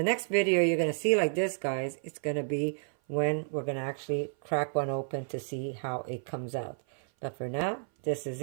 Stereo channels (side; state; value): left; silent; 56 dB below the other